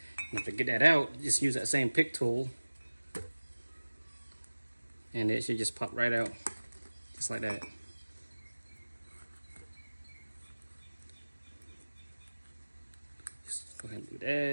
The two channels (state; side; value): inverted; both; correlation -1.00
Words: And to get that out, just use that same pick tool, and it should just pop right out, just like that. Just go ahead and do